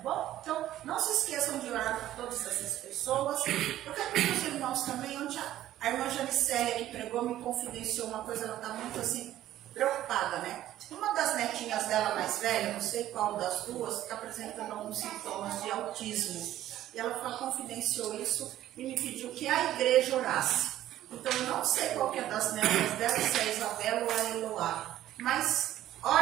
Então, não se esqueçam de orar por todas essas pessoas. Eu quero que os irmãos também, onde a irmã Janicélia que pregou me confidenciou uma coisa, ela está muito assim, preocupada, né? Uma das netinhas dela mais velha, não sei qual das duas, está apresentando alguns sintomas de autismo. E ela confidenciou isso e me pediu que a igreja orasse. Então, eu não sei qual que é das netas dela, se é a Isabela ou a Eloá, mas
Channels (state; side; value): quieter; left; 13.2 dB